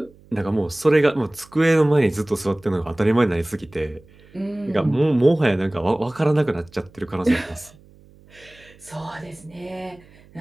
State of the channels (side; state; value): right; noise; hum, 26 dB below the sound